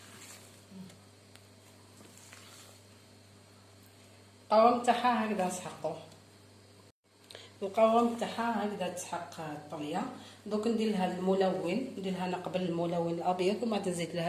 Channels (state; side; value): identical; both; correlation 1.00